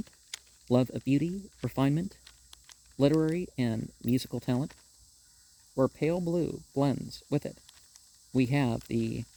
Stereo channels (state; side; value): identical; both; correlation 1.00